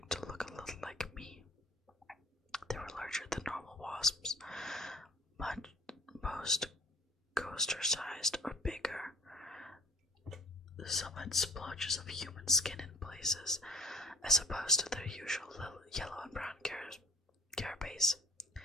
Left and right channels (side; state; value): both; normal; correlation 0.46